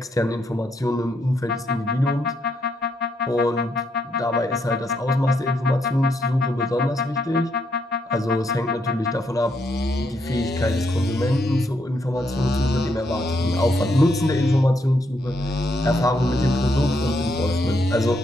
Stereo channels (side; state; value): both; normal; correlation 0.77